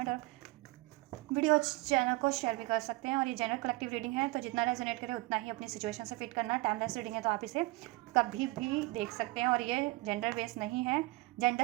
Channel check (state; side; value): quieter; left; 22.3 dB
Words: और वीडियो चैनल को शेयर भी कर सकते हैं। और ये जनरल कलेक्टिव रीडिंग है, तो जितना रेजोनेट करे उतना ही अपनी सिचुएशन से फिट करना। टाइमलेस रीडिंग है, तो आप इसे कभी भी देख सकते हैं। और ये जेंडर बेस्ड नहीं है, gender